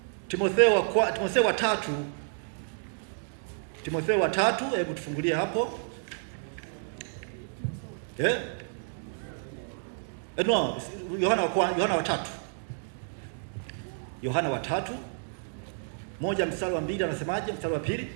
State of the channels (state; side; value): silent; left; digital silence